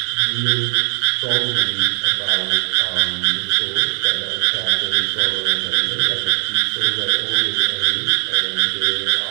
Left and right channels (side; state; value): left; silent; digital silence